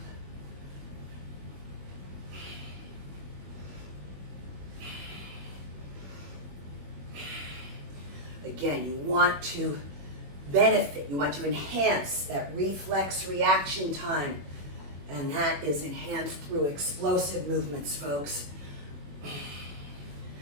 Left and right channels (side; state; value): left; late; 21 ms